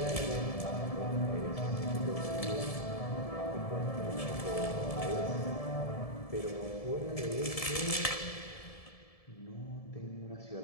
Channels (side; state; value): right; late; 1.7 ms